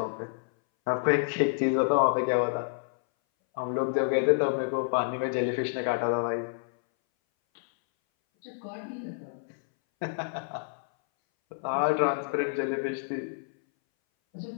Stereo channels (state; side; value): silent; right; 59 dB below the other